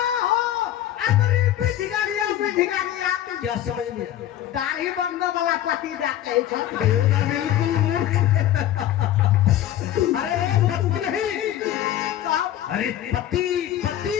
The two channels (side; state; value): right; quieter; 12.2 dB